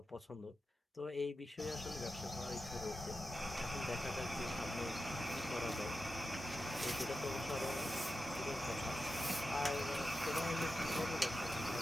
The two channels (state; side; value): normal; both; correlation 0.91